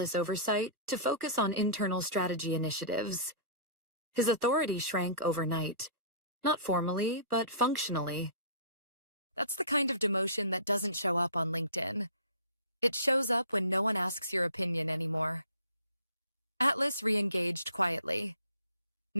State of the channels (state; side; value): inverted; both; correlation -0.43